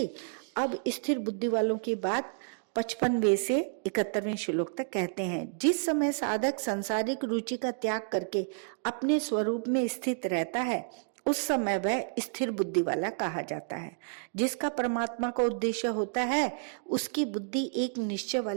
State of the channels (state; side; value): silent; left; digital silence